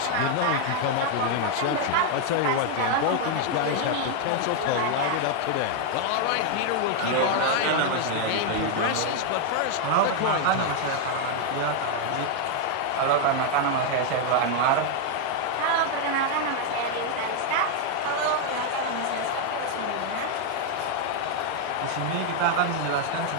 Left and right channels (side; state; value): both; different; correlation 0.00